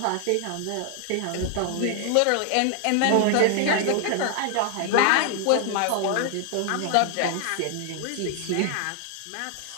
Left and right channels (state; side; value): different; both; correlation 0.00